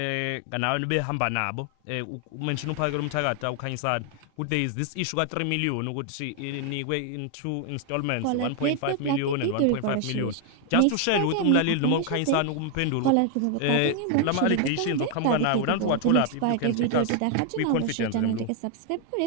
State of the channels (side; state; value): both; different; correlation 0.00